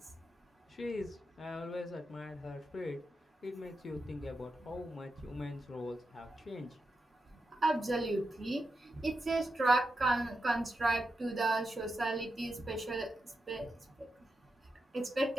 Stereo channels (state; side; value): normal; both; correlation 0.87